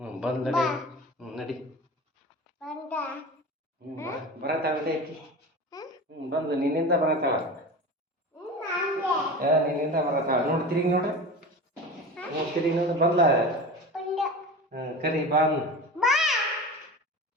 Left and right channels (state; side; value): normal; both; correlation 0.31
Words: ಬಂದ್ ನಡಿ. ನಡಿ ಬರತ್ತಾಳೆ ಐತಿ. ಬಂದು ನಿನ್ನಿಂದ ಬರತ್ತಾಳ. ನಿನ್ನಿಂದ ಬರತ್ತಾಳ. ನೋಡಿ ತಿರುಗಿ ನೋಡ್ರಿ. ತಿರುಗಿ ನೋಡಿ ಬಂದ್ಲ. ಕರಿ ಬಾನ್.